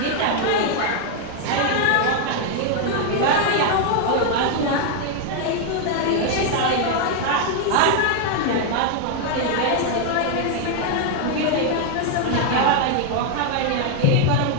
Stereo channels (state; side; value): different; both; correlation 0.00